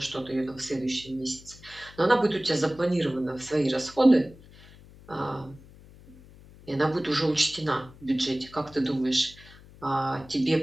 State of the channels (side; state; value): left; noise; hum, 22 dB below the sound